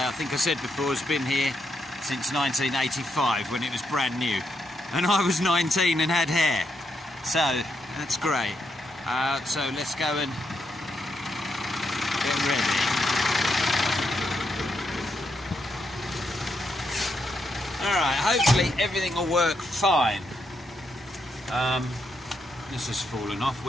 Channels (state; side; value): normal; both; correlation 0.80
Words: I think I said before has been here since 1985 when it was brand new, and I was 19 and had hair, so that's great. So let's go and get ready. Alright, hopefully everything will work fine. This has fallen off.